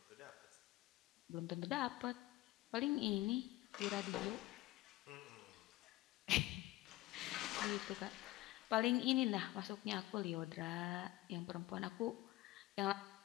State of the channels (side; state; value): right; quieter; 17.7 dB